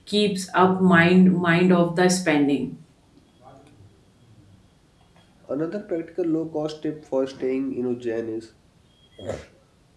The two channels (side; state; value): both; identical; correlation 1.00